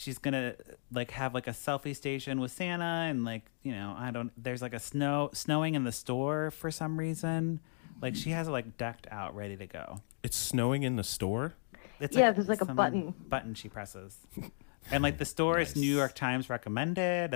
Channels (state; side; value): silent; right; digital silence